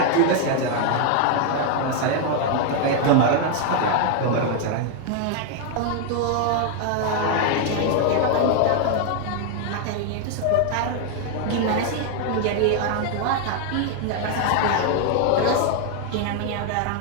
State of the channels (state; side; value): different; both; correlation 0.00